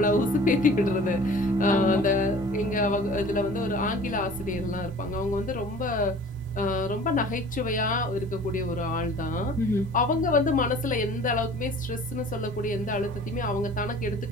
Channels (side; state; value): both; normal; correlation 0.46